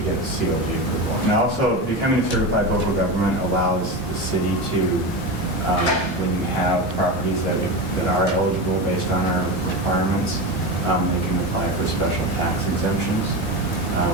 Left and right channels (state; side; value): normal; both; correlation 0.22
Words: get the COG approval. And also, becoming a certified local government allows the city to, when you have properties that are eligible based on our requirements, they can apply for special tax exemptions